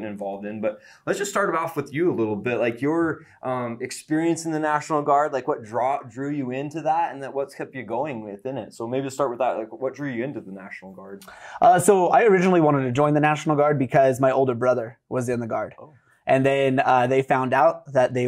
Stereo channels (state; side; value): identical; both; correlation 1.00